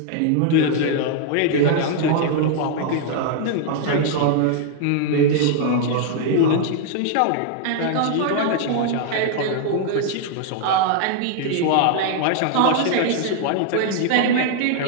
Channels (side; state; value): both; different; correlation 0.00